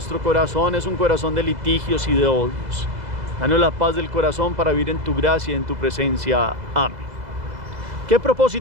corazón es un corazón de litigios y de odios. Danos la paz del corazón para vivir en tu gracia y en tu presencia. Amén. ¿Qué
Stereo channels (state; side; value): late; left; 2.0 ms